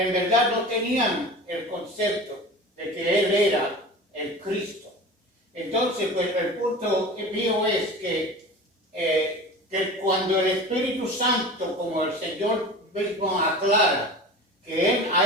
verdad no tenían el concepto de que Él era el Cristo. Entonces, pues el punto mío es que cuando el Espíritu Santo, como el Señor mismo aclara, que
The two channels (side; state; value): both; normal; correlation 0.35